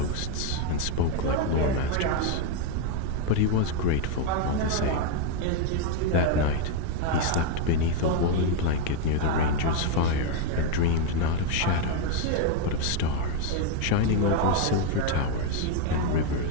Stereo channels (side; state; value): both; different; correlation 0.01